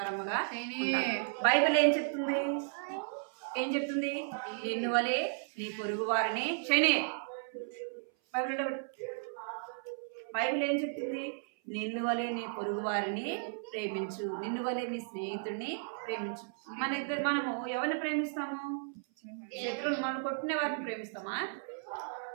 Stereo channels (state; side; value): silent; left; 55 dB below the other